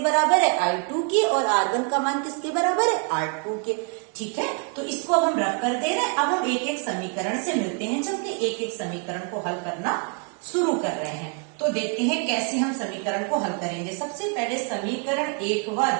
बराबर है I2 के, और R1 का मान किसके बराबर है R2 के। ठीक है, तो इसको अब हम रफ कर दे रहे हैं। अब हम एक एक समीकरण से मिलते हैं, चलते एक एक समीकरण को हल करना शुरू कर रहे हैं। तो देखते हैं कैसे हम समीकरण को हल करेंगे। सबसे पहले समीकरण 1 व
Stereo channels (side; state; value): left; quieter; 39.7 dB